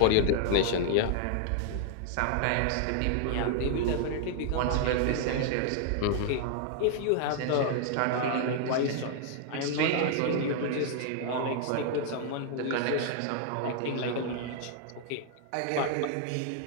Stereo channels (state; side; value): different; both; correlation 0.00